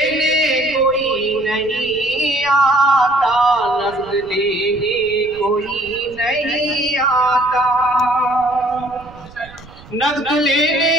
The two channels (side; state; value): right; noise; rumble, 21 dB below the sound